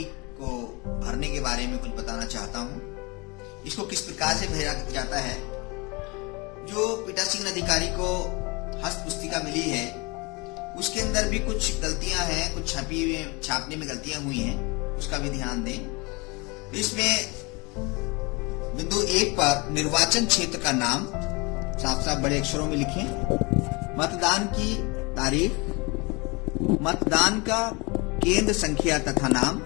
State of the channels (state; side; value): quieter; right; 27.4 dB